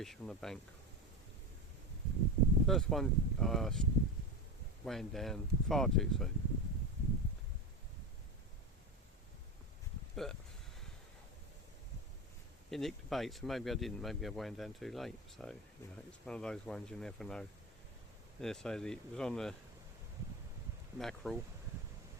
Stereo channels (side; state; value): both; normal; correlation 0.20